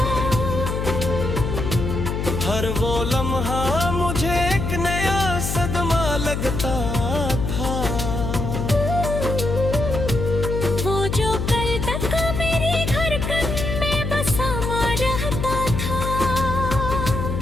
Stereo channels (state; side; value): noise; left; hum, 2 dB below the sound